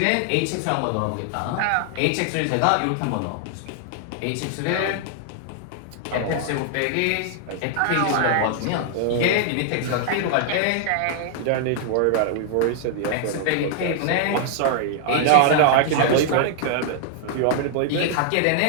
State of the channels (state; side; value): different; both; correlation 0.00